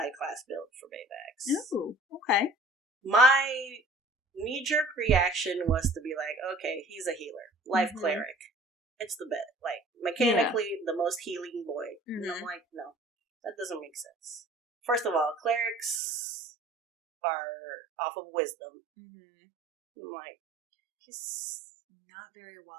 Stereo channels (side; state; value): left; drops out; at 16.0 s